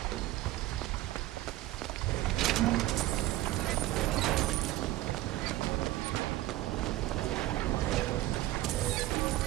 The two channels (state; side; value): quieter; left; 16.3 dB